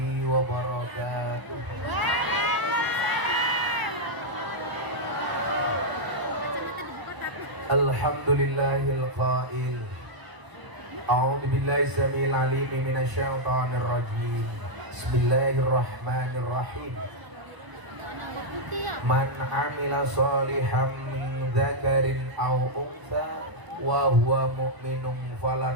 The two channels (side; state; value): left; late; 1.0 ms